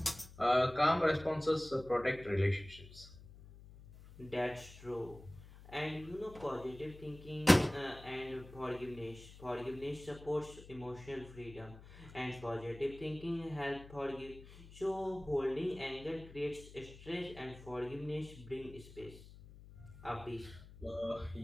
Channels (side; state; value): left; noise; hum, 18 dB below the sound